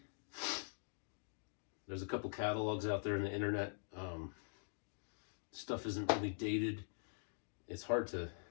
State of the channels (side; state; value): right; silent; digital silence